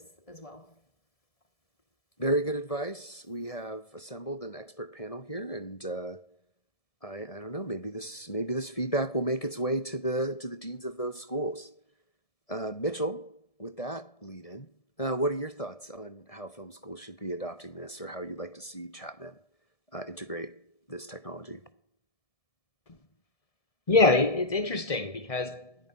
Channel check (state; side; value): late; right; 1.7 ms